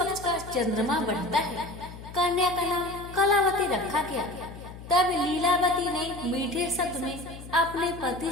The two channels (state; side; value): noise; left; hum, 14 dB below the sound